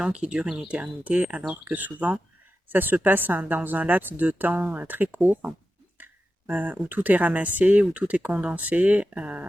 qu'ils durent une éternité alors que souvent ça se passe dans un laps de temps très court où tout est ramassé, où tout est condensé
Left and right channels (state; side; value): normal; both; correlation 0.91